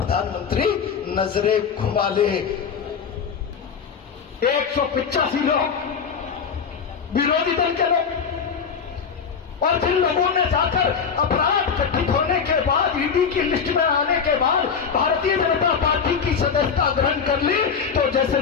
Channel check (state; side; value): quieter; right; 6.4 dB